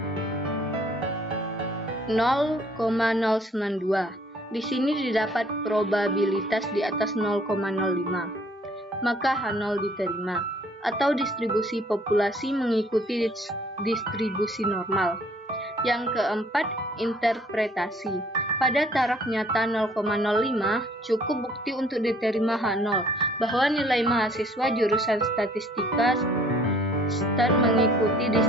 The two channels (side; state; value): both; normal; correlation 0.59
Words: 0,092. Di sini didapat probabilitas di atas 0,05, maka H0 diterima, atau distribusi populasi mengikuti distribusi normal. Yang keempat, interpretasi. Pada taraf nyata 0,05, cukup bukti untuk diterima H0 bahwa nilai mahasiswa jurusan statistika stat mengikuti